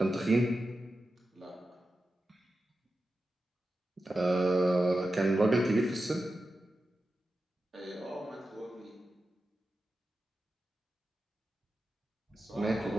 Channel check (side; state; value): both; normal; correlation 0.92